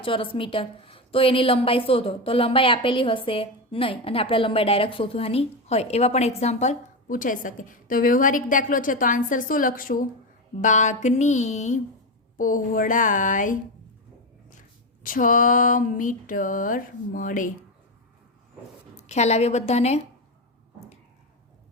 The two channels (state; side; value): normal; both; correlation 0.14